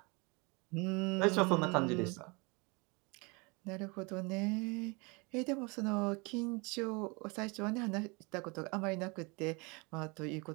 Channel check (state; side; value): quieter; left; 28.9 dB